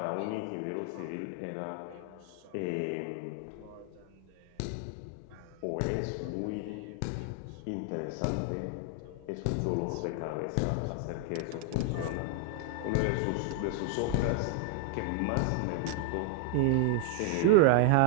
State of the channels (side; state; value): both; different; correlation 0.00